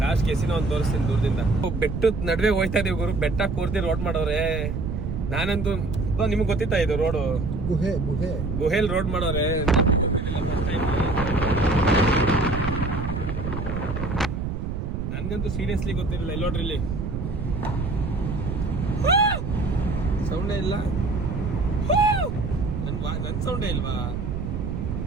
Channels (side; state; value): right; noise; rumble, 3 dB below the sound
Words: ಲಾಸ್ಟ್ ಕೆಸಿನ ಒಂದು ತೋರಿಸ್ತೀನಿ ದೂರದಿಂದ. ಬೆಟ್ಟದ ನಡುವೆ ಹೋಯ್ತಾ ಇದೀವಿ ಗುರು. ಬೆಟ್ಟ ಕೂರ್ತಿ ರೋಡ್ ಮಾಡೋರೆ. ನಾನಂತೂ ನಿಮ್ಗೆ ಗೊತ್ತಿತ್ತಾ ಇದು ರೋಡು? ಗುಹೆ ಗುಹೆಲ್ ರೋಡ್ ಮಾಡೋರೆ. ನನ್ಗಂತೂ ಸೀರಿಯಸ್ಲಿ ಗೊತ್ತಿರಲಿಲ್ಲ. ಇಲ್ಲಿ ನೋಡ್ರಿ, ಇಲ್ಲಿ ಸೌಂಡೇ ಇಲ್ಲ. ನನ್ ಸೌಂಡೇ ಇಲ್ವಾ?